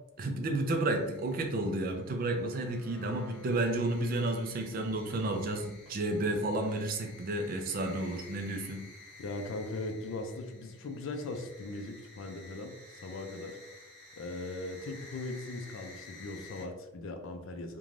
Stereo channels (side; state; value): both; normal; correlation 0.38